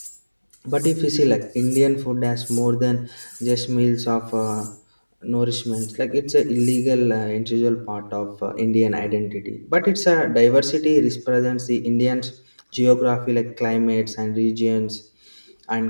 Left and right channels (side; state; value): both; inverted; correlation -1.00